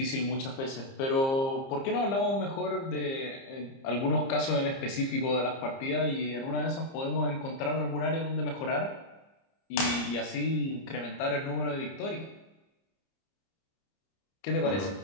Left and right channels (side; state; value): right; late; 30 ms